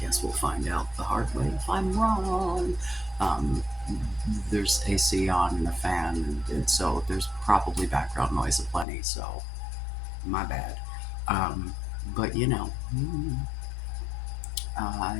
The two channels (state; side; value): drops out; right; at 8.8 s